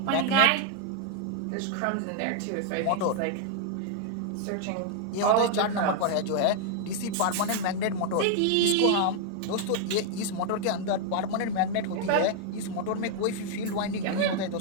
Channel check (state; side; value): different; both; correlation 0.00